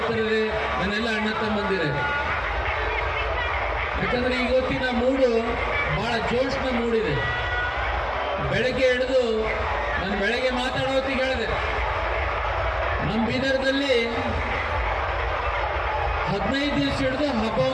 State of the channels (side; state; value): both; identical; correlation 1.00